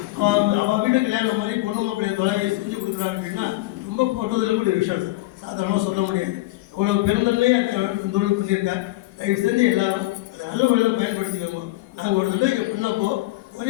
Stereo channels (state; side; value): quieter; right; 19.2 dB